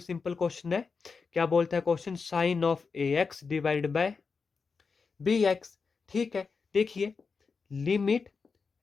सिंपल क्वेश्चन है। क्या बोलता है question, sine of ax divide by bx। ठीक है, देखिए limit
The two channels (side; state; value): right; quieter; 5.0 dB